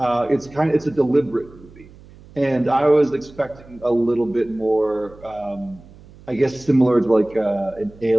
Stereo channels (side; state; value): right; noise; hum, 22 dB below the sound